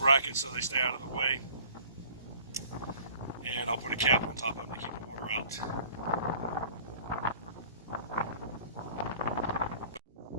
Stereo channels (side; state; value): both; inverted; correlation -0.50